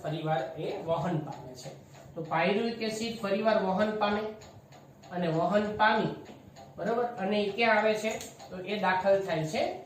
ફરીવાર એ વહન પામે છે. તો પાયરુવિક એસિડ ફરીવાર વહન પામે અને વહન પામી બરાબર અને એ ક્યાં આવે છે તો એ દાખલ થાય છે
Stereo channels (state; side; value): identical; both; correlation 1.00